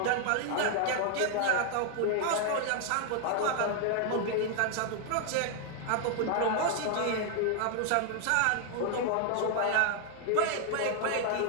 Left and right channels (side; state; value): both; different; correlation 0.00